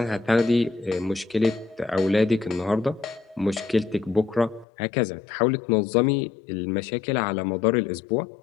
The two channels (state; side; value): drops out; right; at 4.7 s